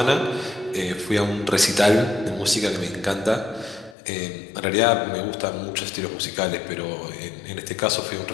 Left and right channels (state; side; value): drops out; right; at 4.0 s